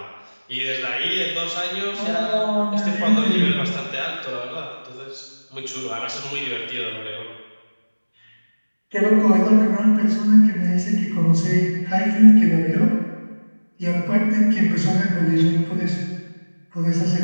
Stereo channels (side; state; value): both; inverted; correlation -1.00